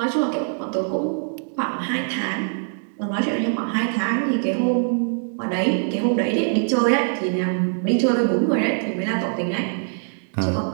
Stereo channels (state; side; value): silent; left; digital silence